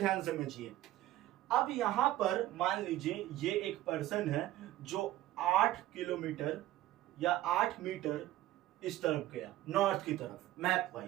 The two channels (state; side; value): quieter; left; 15.0 dB